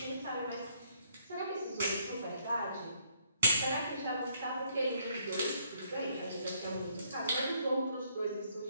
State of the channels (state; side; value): inverted; both; correlation -0.69